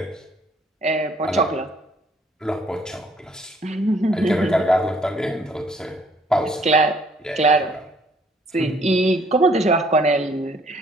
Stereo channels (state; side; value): normal; both; correlation 0.62